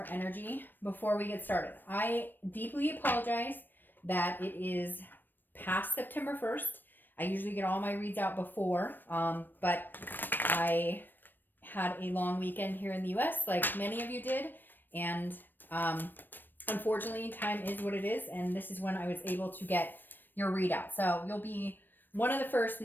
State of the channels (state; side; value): late; right; 0.093 ms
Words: energy before we get started. I deeply apologize that it is past September 1st. I usually get all my reads out before, but I had a long weekend here in the US, like many of you did, and unfortunately, time is what it is, and this is when I was able to get your readout. So you'll be one of the first